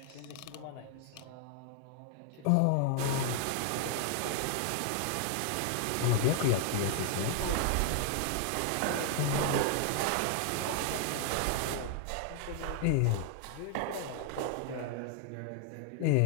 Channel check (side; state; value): both; different; correlation 0.00